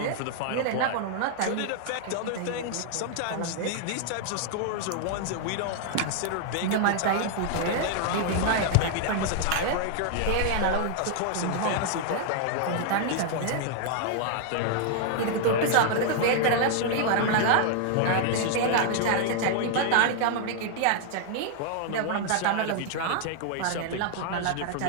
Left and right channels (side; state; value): both; different; correlation 0.00